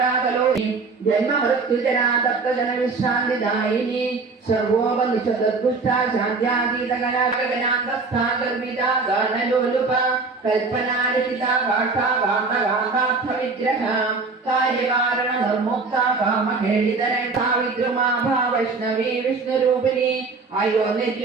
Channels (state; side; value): quieter; left; 4.2 dB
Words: കലോനി ജന്മമൃത്യുജരാ തപ്തജനവിശ്രാന്തിദായിനി സർവോപനിഷദുഷ്ട ശാന്ത്യാതീതകലാഗനാന്തസ്ഥാ ഗർവിതാ ഗാനലോലുപ കൽപ്പനാലിഖിത ഗാഠാ ഗാന്ധഗാന്ധാർത്ഥ വിഗ്രഹ കാര്യകാരണ നിർമുക്ത കാമഖേളിതരക്ഷാ വിദ്രുമാഭാ വൈഷ്ണവീ വിഷ്ണുരൂപിണി